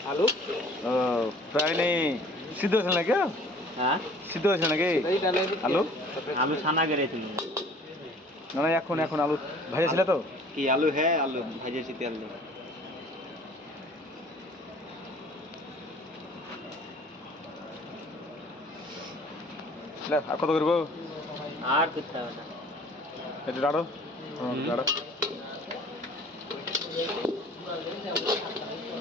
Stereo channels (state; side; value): normal; both; correlation 0.50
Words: आलू फ्राई नहीं সিদ্ধ হয়েছিল না কেউ হ্যাঁ সিদ্ধ হয়েছিল নাকি আলু আলু ছানা করেছিল না না এখন এখন আলু ভাজা ছিল তো কি আলু হ্যাঁ আলু ভাজেছি তেল দিয়ে আর কত করবো আর করতে হবে না একটু দাঁড়ো দাঁড়ো